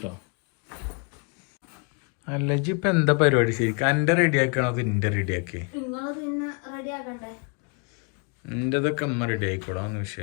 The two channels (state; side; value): quieter; right; 32.9 dB